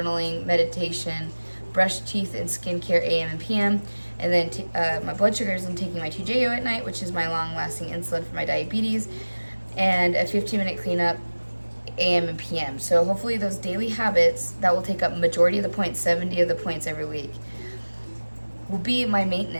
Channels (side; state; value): both; inverted; correlation -1.00